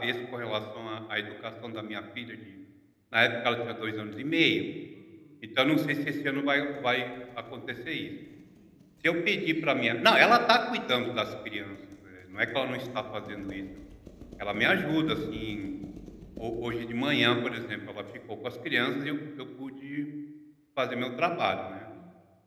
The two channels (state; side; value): identical; both; correlation 1.00